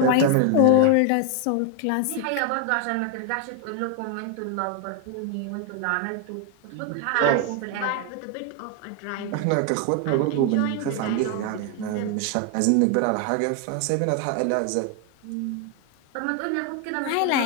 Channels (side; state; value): both; different; correlation 0.01